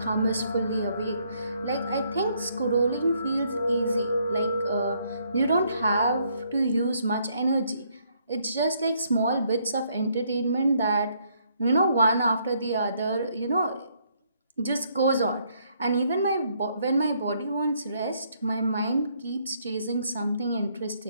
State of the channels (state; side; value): inverted; both; correlation -0.70